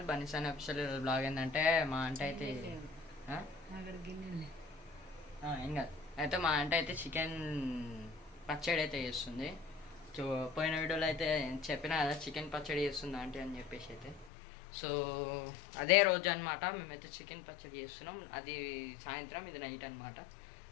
బనీసాన్ official. Blog ఏంటంటే మా అంటే అయితే ఏం కాదు అయితే మా అంటే అయితే చికెన్ పచ్చడి అయితే చేస్తుంది. సో పోయిన వీడియోలో అయితే చెప్పినా కదా చికెన్ పచ్చడి చేస్తుంది ఆంటీ అని చెప్పేసి అయితే. సో అదే రోజు అనమాట మేమైతే చికెన్ పచ్చడి చేస్తున్నాం. అది సాయంత్రం, ఇది నైట్ అనమాట.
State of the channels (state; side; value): drops out; right; at 14.3 s